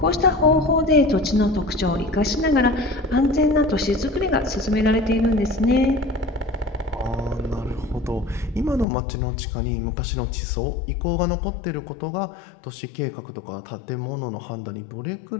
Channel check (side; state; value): right; drops out; at 8.8 s